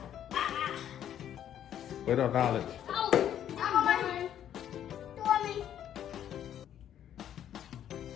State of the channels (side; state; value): right; quieter; 10.4 dB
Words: Wait on Knowledge. Oh, I'm on. For me.